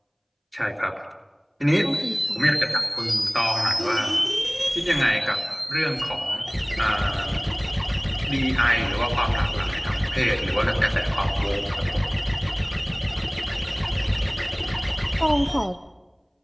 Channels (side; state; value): both; identical; correlation 1.00